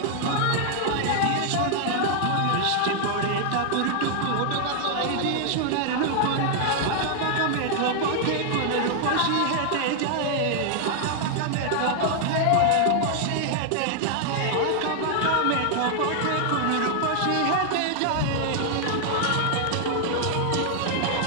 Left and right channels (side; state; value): both; different; correlation 0.00